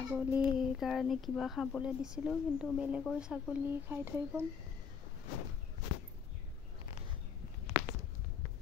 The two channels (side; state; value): right; quieter; 6.5 dB